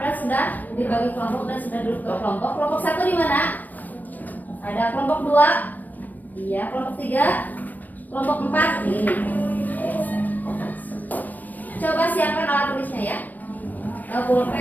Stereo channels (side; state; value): right; late; 0.082 ms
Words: sudah dibagi kelompok dan sudah duduk ke kelompok. Kelompok 1 di mana? Ada kelompok 2. Iya, kelompok 3. Kelompok 4 ini. Coba siapkan alat tulisnya ya.